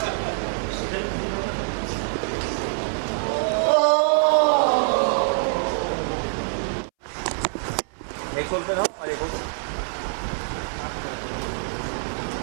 एक सोल पे था और एक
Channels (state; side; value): silent; left; 62 dB below the other